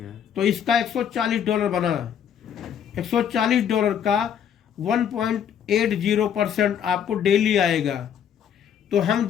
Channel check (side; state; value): right; quieter; 8.7 dB